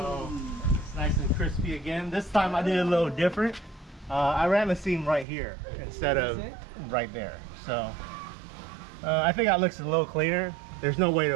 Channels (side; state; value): left; drops out; at 5.2 s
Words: it's nice and crispy again. This time I did a little different. I ran the seam right here instead of right there. So I think that looks a little cleaner. There's no way